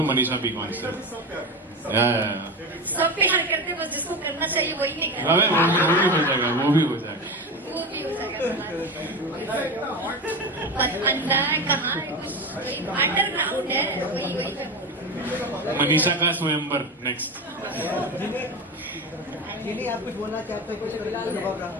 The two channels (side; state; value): both; normal; correlation 0.22